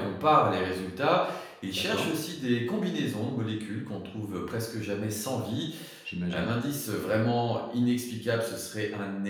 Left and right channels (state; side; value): identical; both; correlation 1.00